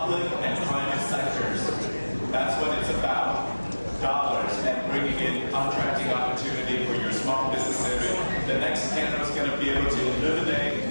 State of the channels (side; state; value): both; inverted; correlation -1.00